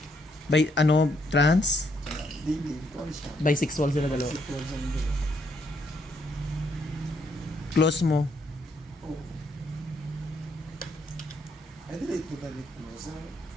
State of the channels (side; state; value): both; normal; correlation 0.73